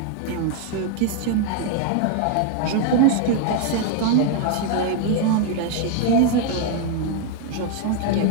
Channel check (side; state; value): both; different; correlation 0.00